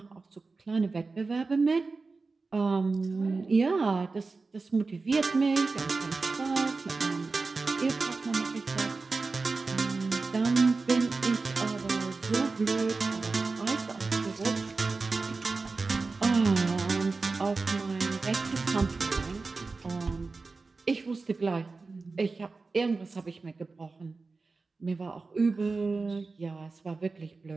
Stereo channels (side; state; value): left; quieter; 4.0 dB